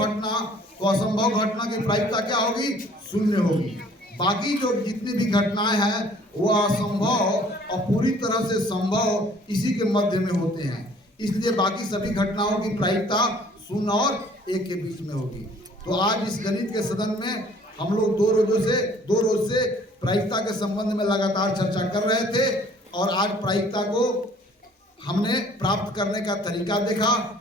घटना, तो असंभव घटना की प्रायिकता क्या होगी? 0 होगी। बाकी जो जितनी भी घटनाएं हैं वो असंभव और पूरी तरह से संभव इसी के मध्य में होते हैं, इसलिए बाकी सभी घटनाओं की प्रायिकता 0 और 1 के बीच में होगी। तो आज इस गणित के सदन में हम लोग दो रोज से प्रायिकता के संबंध में लगातार चर्चा कर रहे थे और आज प्रायिकता को हमने प्राप्त करने का तरीका देखा।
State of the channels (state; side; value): normal; both; correlation 0.55